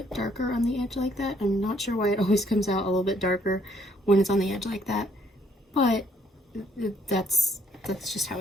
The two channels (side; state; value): both; normal; correlation 0.66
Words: darker on the edge like that. I'm not sure why it always comes out a little bit darker when it's on the edge like that, but that's just how